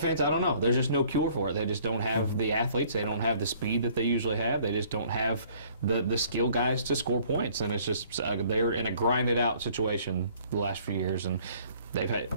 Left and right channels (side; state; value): both; inverted; correlation -0.58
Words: I don't know. There's just no cure for it. They just don't have the athletes. They don't have the speed that they usually have. They just don't have the skill guys to score points, and it's just they're in a grinded out situation the last few years, and they've